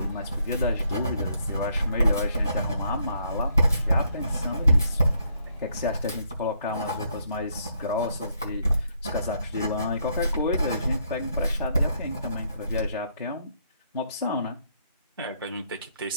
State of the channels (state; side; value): inverted; both; correlation -0.72